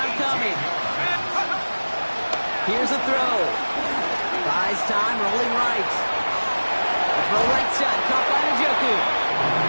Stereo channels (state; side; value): inverted; both; correlation -1.00